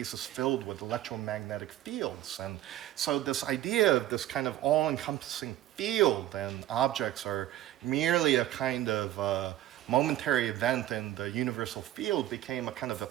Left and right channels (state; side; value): quieter; left; 13.7 dB